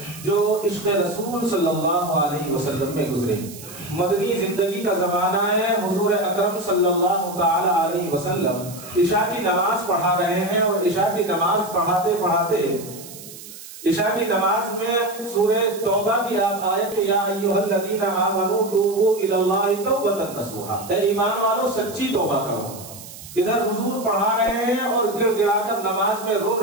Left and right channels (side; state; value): right; noise; hiss, 15 dB below the sound